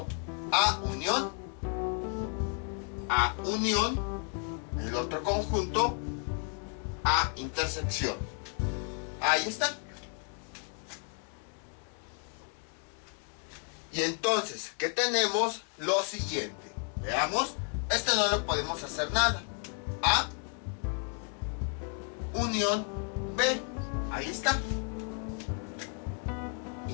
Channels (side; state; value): right; quieter; 39.9 dB